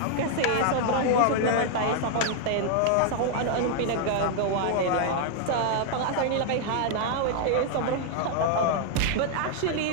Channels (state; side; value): different; both; correlation 0.00